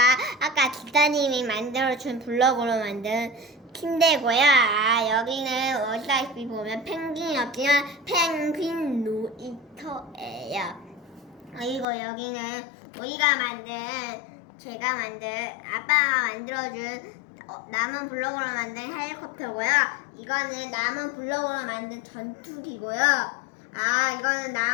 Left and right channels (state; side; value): drops out; right; at 11.9 s